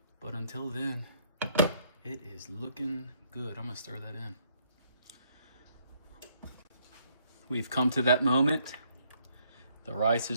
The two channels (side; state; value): both; inverted; correlation -0.69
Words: But until then, it is looking good. I'm gonna stir that in. We've come to that moment. The rice